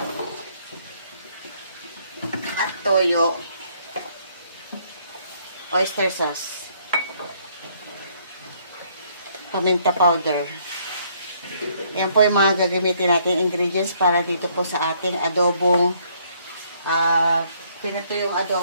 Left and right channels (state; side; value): inverted; both; correlation -0.67